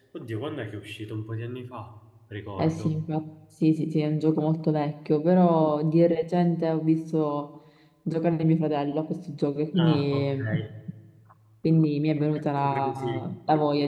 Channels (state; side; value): identical; both; correlation 1.00